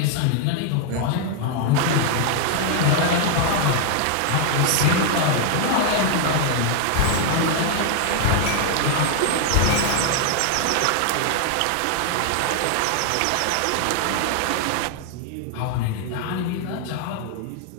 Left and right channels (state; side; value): different; both; correlation 0.00